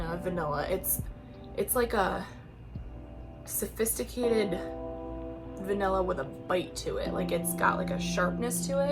vanilla. It's like a sophisticated vanilla with a bite to it. Like it's got like a sharpness to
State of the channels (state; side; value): identical; both; correlation 1.00